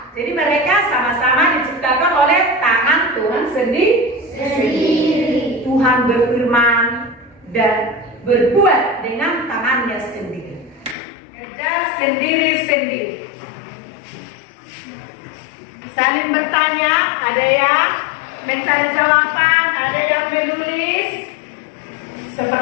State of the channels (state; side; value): drops out; right; at 11.0 s